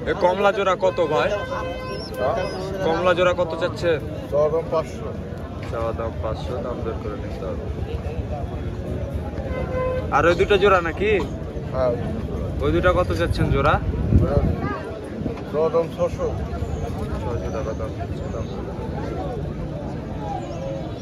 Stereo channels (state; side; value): identical; both; correlation 1.00